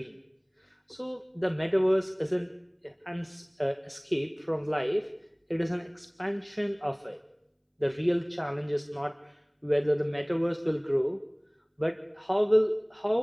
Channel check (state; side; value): identical; both; correlation 1.00